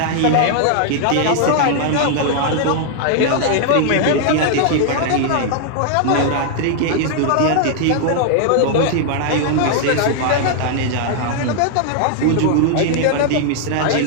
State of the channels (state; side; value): different; both; correlation 0.00